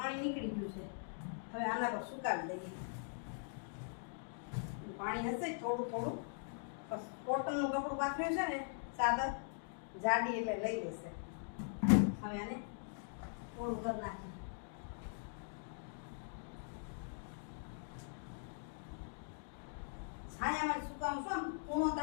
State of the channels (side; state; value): right; silent; digital silence